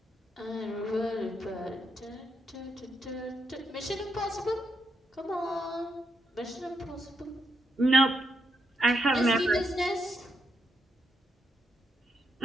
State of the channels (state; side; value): normal; both; correlation 0.81